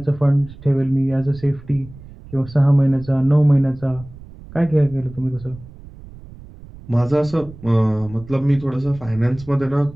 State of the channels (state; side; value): noise; right; rumble, 18 dB below the sound